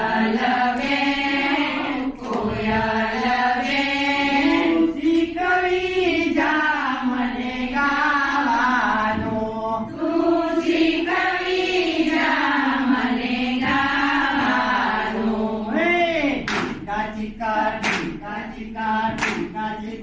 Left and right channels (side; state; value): both; identical; correlation 1.00